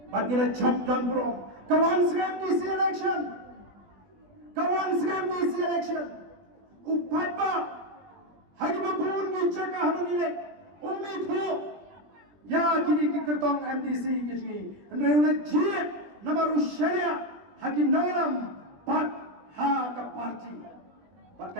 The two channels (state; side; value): late; left; 20 ms